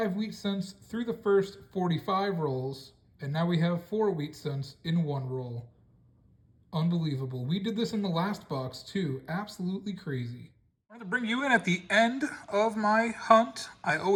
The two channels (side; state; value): both; identical; correlation 1.00